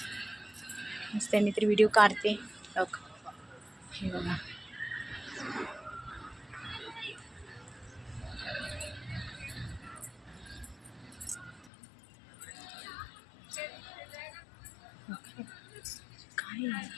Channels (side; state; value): right; drops out; at 11.7 s